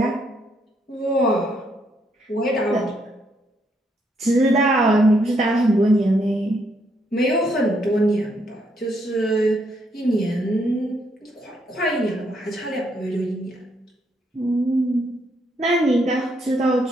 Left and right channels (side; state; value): both; normal; correlation 0.74